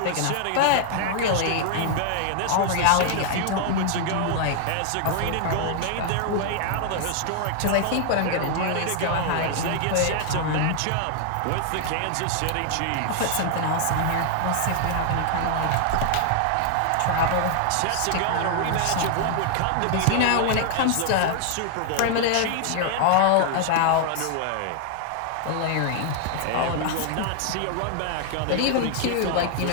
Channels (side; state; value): both; different; correlation 0.00